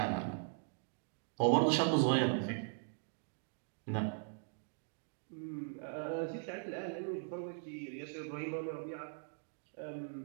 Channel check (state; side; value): silent; left; digital silence